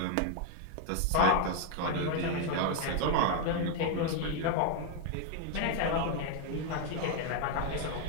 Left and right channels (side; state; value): both; different; correlation 0.00